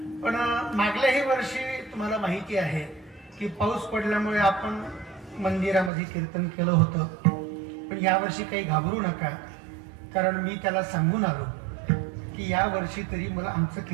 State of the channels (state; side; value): drops out; left; at 5.9 s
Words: पण मागल्याही वर्षी तुम्हाला माहिती आहे की पाऊस पडल्यामुळे आपण मंदिरामध्ये कीर्तन केलं होतं पण यावर्षी काही घाबरू नका कारण मी त्याला सांगून आलो की या वर्षी तरी मला आमचं